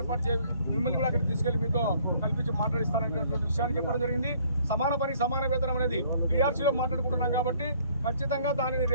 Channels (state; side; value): inverted; both; correlation -0.60